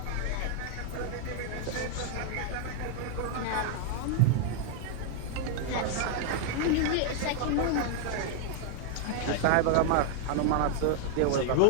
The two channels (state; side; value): different; both; correlation 0.00